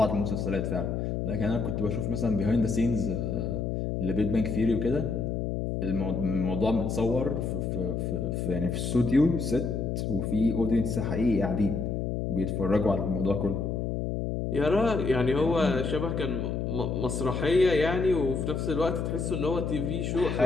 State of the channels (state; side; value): noise; left; hum, 1 dB below the sound